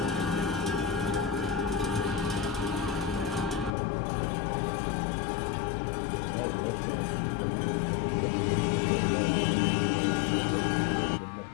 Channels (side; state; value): right; drops out; at 3.7 s